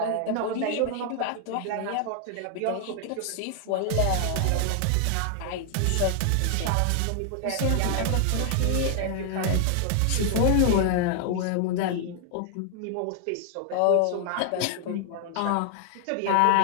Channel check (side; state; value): both; different; correlation 0.00